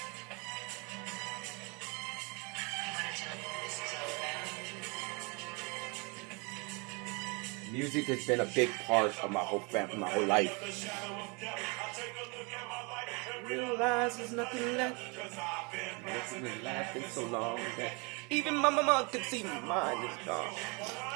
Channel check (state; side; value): quieter; left; 30.8 dB